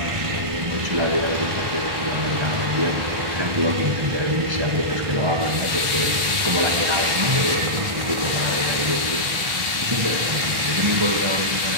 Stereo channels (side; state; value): left; late; 1.1 ms